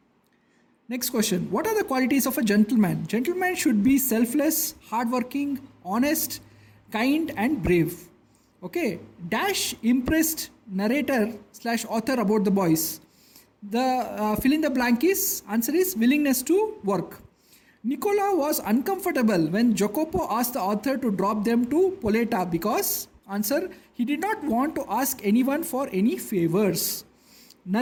Next question. What are the qualities of a gentleman? Gentleman should be selfless, hardworking, honest, kind and brave. Okay. Dash impressed narrator / author about the boys. The fill in the blank answer is willingness to work. Nicola was uncomfortable when Jacopo asked the author to drop them to Poleta because, answer, he did not want to ask anyone for any favors.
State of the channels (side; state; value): both; identical; correlation 1.00